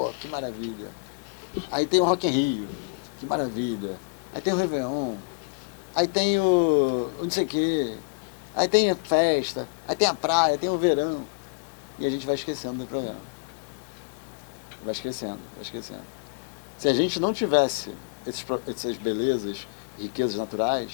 que maravilha. Aí tem o Rock in Rio. Que maravilha. Aí tem o Réveillon. Aí tem o não sei o quê. Aí tem a festa. Aí tem a praia, tem o verão. E a gente vai esquecendo do programa. Vai esquecendo. Se a gente não tivesse essas belezas, riquezas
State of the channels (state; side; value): quieter; right; 34.9 dB